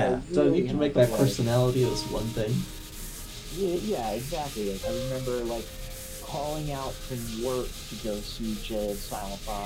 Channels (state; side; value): identical; both; correlation 1.00